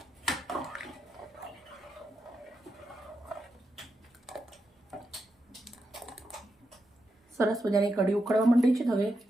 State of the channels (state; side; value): normal; both; correlation 0.85